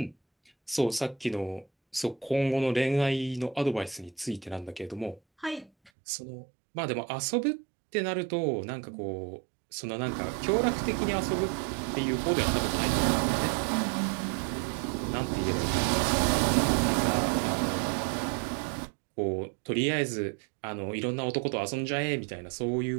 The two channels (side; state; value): left; drops out; at 5.9 s